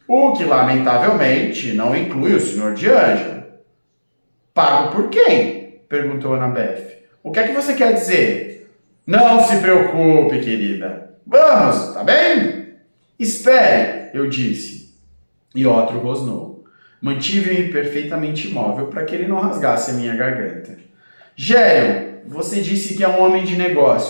o que, lamentavelmente, não inclui o Sr. D'Angelo. Pago por quem? Perguntou Annabeth. O que é que você quer dizer? Não se preocupe, querida. Vamos, tá bem? Espere, eu disse. E Otro rosnou. Mantive-me perfeitamente imóvel para que ele não rasgasse a minha garganta. Gerion, você disse que é um homem de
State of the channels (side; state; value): both; inverted; correlation -1.00